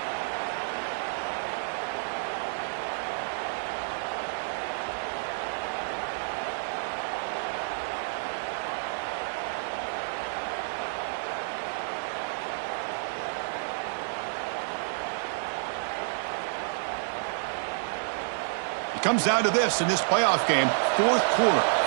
It comes down to this in this playoff game. Fourth quarter,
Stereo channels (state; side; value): silent; left; 58 dB below the other